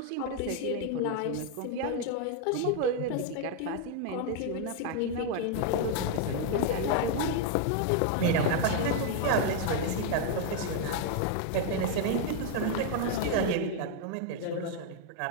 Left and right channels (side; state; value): both; different; correlation 0.00